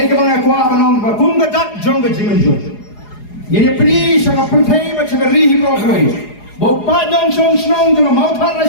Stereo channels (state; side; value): late; right; 4.8 ms